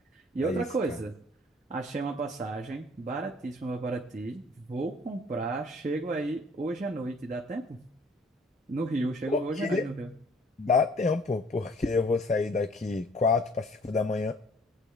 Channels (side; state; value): both; normal; correlation 0.56